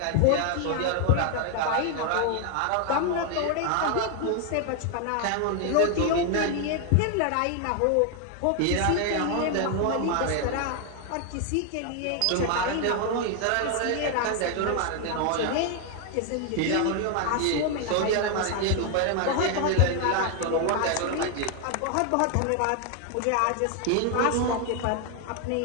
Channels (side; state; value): both; different; correlation 0.01